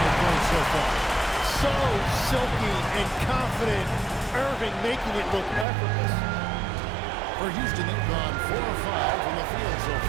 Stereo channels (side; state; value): left; drops out; at 5.7 s